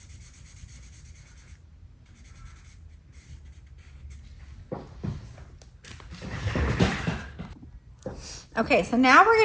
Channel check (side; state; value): both; identical; correlation 1.00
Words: Okay, so now